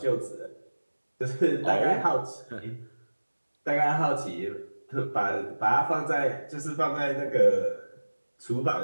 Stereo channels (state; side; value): inverted; both; correlation -1.00